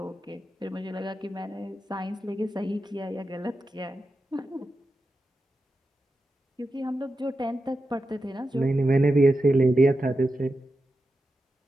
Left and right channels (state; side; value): normal; both; correlation 0.90